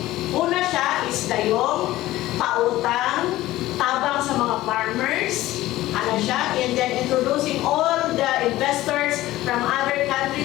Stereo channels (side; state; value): right; quieter; 16.2 dB